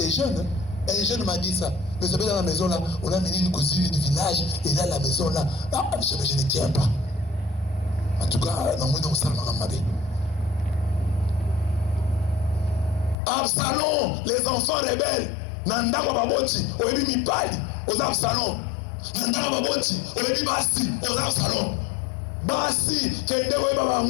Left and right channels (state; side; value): drops out; right; at 13.2 s